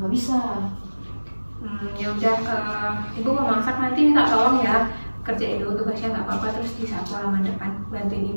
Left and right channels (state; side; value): inverted; both; correlation -1.00